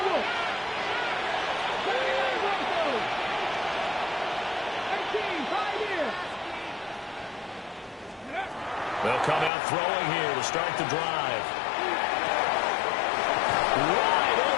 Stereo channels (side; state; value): right; drops out; at 9.5 s